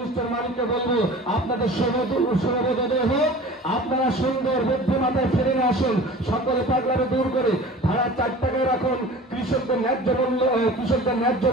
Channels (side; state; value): both; normal; correlation 0.40